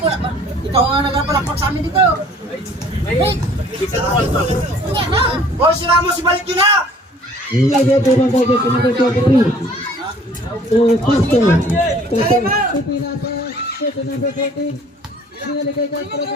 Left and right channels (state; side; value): normal; both; correlation 0.54